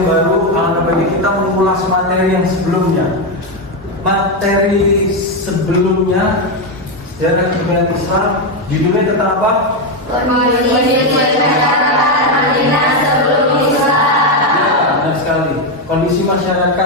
baru, alangkah baiknya kita mengulas materi yang sebelumnya. Materi sebelumnya Sejarah Kebudayaan Islam, judulnya tentang apa? Kondisi masyarakat Madinah sebelum Islam. Ya, benar sekali. Kondisi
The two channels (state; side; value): normal; both; correlation 0.07